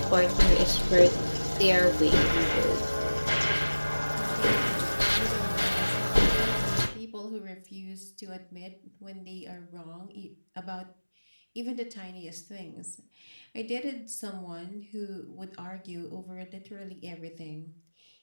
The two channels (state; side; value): inverted; both; correlation -1.00